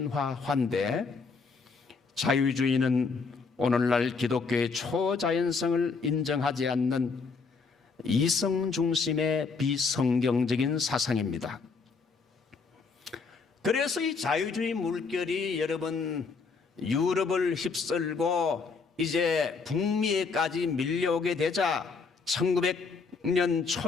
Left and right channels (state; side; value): quieter; right; 4.8 dB